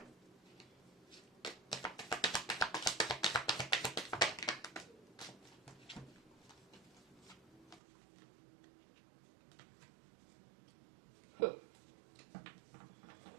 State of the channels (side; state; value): left; drops out; at 7.8 s